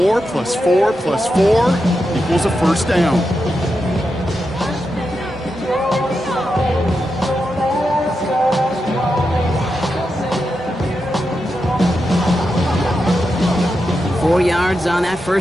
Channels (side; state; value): both; normal; correlation 0.87